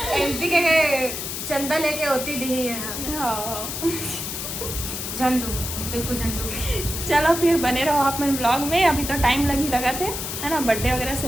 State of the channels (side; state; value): left; noise; hiss, 5 dB below the sound